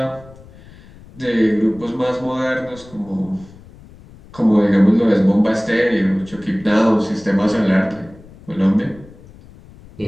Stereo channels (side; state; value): left; noise; rumble, 22 dB below the sound